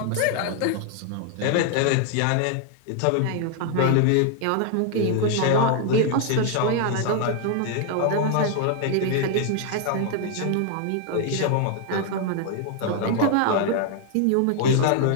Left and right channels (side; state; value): both; different; correlation 0.00